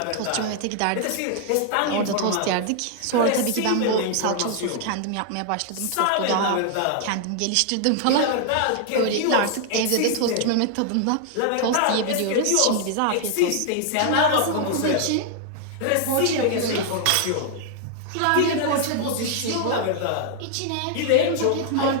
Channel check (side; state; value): both; different; correlation 0.00